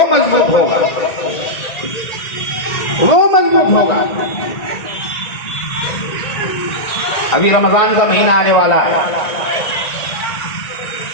मजबूत होगा, वो मजबूत होगा। अभी रमजान का महीना आने वाला है।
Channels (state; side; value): late; right; 1.9 ms